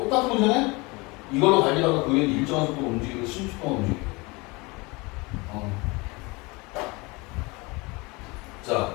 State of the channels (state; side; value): quieter; right; 25.7 dB